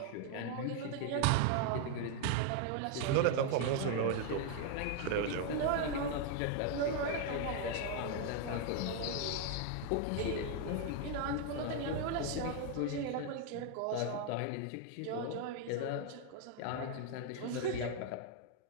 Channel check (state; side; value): different; both; correlation 0.01